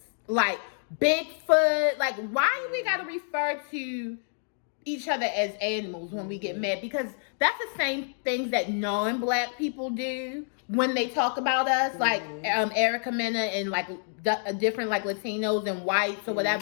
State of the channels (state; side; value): silent; right; digital silence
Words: Like, Bigfoot. Like, why do we gotta refer to each other as animals when we get mad? Because that's the same things that non-black people do when they talk about us, like Erica Mena and like different like Latinos and whites or